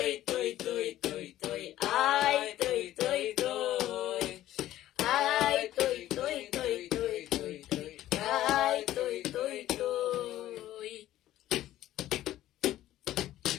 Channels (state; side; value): quieter; right; 13.9 dB